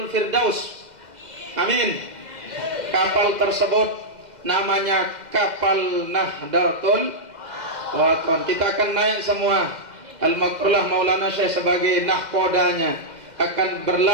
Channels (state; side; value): late; left; 2.0 ms